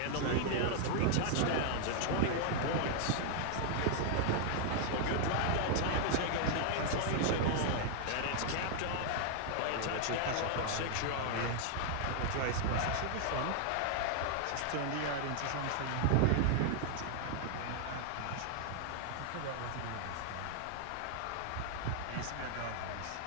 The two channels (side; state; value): both; different; correlation 0.00